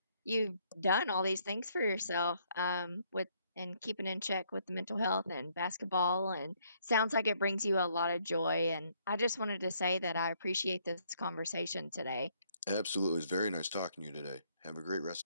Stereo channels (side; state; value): both; inverted; correlation -0.69